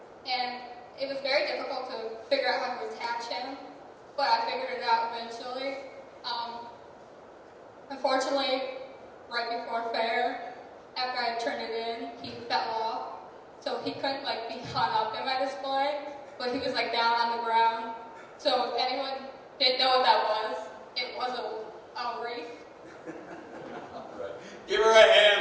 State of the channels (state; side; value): identical; both; correlation 1.00